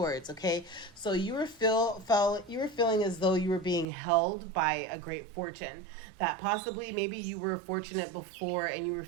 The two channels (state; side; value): drops out; left; at 3.9 s